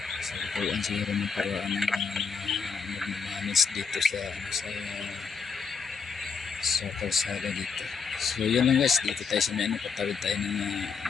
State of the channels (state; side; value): quieter; right; 5.6 dB